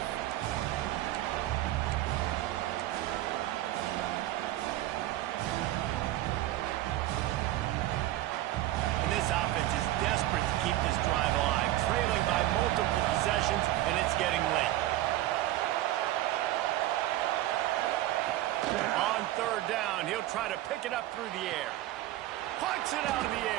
And this offense is desperate to keep this drive alive, trailing by multiple possessions, and it's getting late. On 3rd down, he'll try to pick it up through the air. Punts it out of the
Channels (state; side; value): quieter; left; 15.3 dB